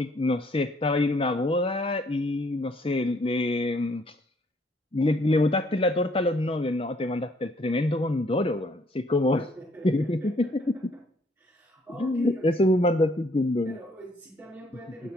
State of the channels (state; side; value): normal; both; correlation 0.65